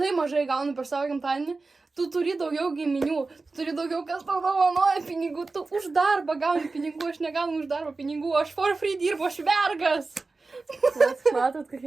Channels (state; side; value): quieter; left; 3.7 dB